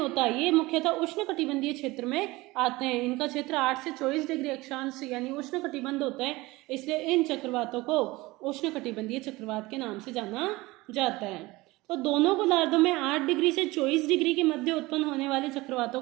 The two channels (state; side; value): quieter; left; 20.9 dB